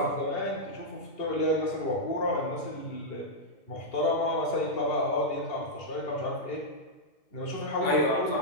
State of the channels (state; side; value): late; right; 2.8 ms